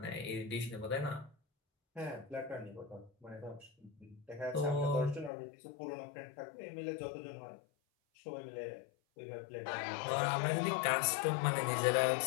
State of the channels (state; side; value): drops out; right; at 5.3 s